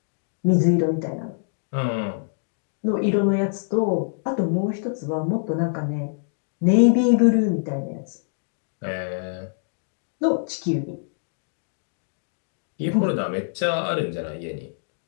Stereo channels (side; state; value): right; silent; digital silence